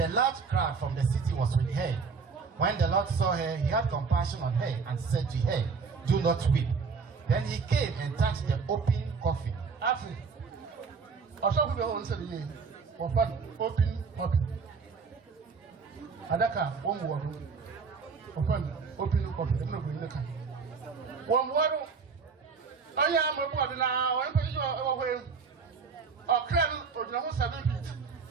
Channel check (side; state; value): left; quieter; 5.2 dB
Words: a large crowd from the city was with her. When the Lord saw her, he had compassion on her and said to her, "Do not weep." Then he came and touched the open coffin. After, also we will answer the year. Open coffin. Adaka, one word. Open coffin. I'm not going to come. One word. I am a word now. I'm going to go away. Ɔkrɔnkrɔnyi or the 7 feet.